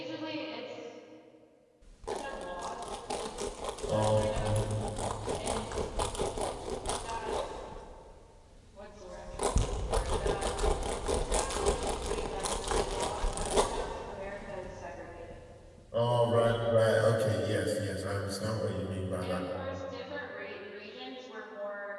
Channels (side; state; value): both; identical; correlation 1.00